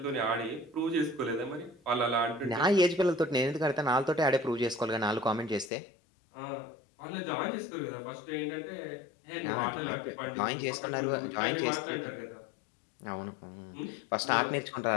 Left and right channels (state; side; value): drops out; right; at 5.7 s